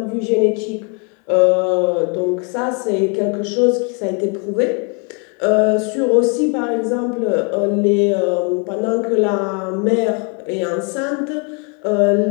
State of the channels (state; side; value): quieter; right; 36.7 dB